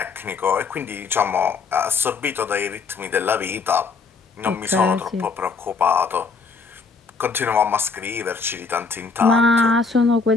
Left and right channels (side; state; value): right; quieter; 4.8 dB